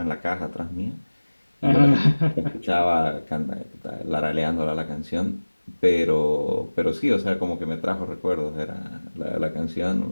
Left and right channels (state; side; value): inverted; both; correlation -1.00